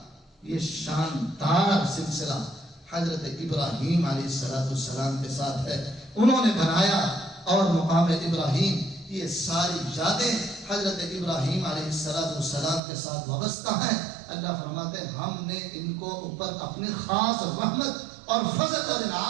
یہ شاندار سلسلہ حضرت ابراہیم علیہ السلام کے ساتھ ہے۔ انہوں نے بنایا، اور مقام ابراہیم یہ ساری یادیں حضرت ابراہیم علیہ السلام کے ساتھ وابستہ ہیں۔ اللہ فرماتے ہیں ہم نے ان کو اوپر اپنی خاص رحمت اور فضل اور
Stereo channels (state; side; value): drops out; left; at 12.8 s